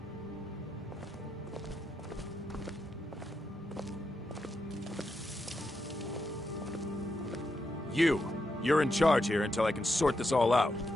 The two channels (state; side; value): normal; both; correlation 0.84